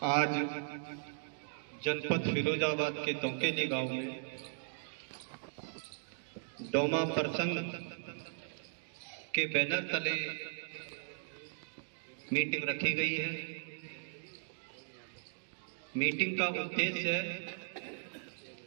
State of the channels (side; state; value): left; silent; digital silence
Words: जनपद फिरोजाबाद के तोकेली गांव में डोमा प्रसंग के बैनर तले मीटिंग रखी गई है। मीटिंग का उद्देश्य है